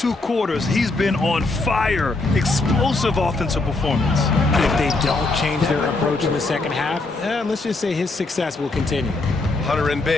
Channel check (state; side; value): quieter; right; 3.3 dB